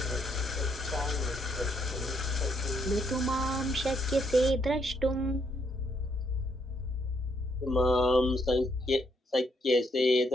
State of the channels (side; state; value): both; normal; correlation 0.73